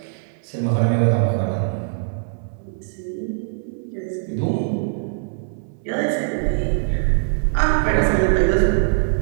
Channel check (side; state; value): left; silent; digital silence